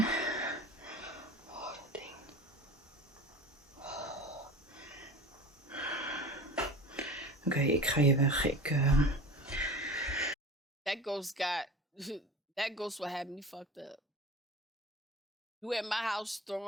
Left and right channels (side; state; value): both; normal; correlation 0.35